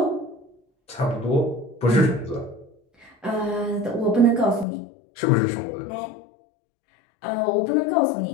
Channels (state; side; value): drops out; right; at 4.7 s